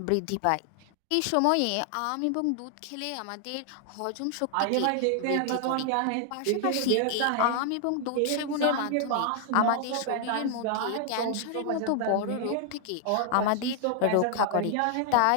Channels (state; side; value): different; both; correlation 0.00